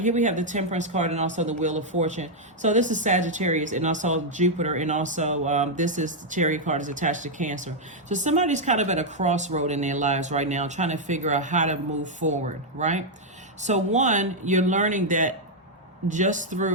we have the Temperance card and also the Wheel of Fortune. So this is Sagittarius and also Jupiter, and also this is the Chariot card is attached to Cancer. So somebody's kind of at a crossroad in their lives right now, trying to figure out how to move forward, right? So one, you're learning that just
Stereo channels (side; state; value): both; normal; correlation -0.02